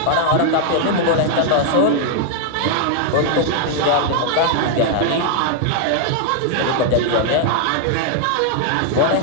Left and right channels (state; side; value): different; both; correlation 0.00